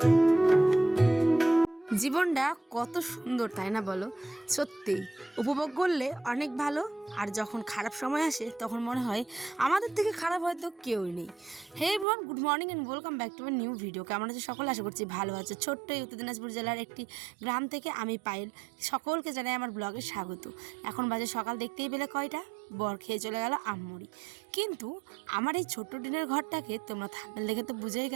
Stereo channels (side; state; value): left; drops out; at 12.1 s